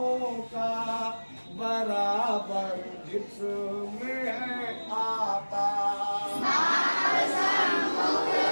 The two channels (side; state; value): both; inverted; correlation -1.00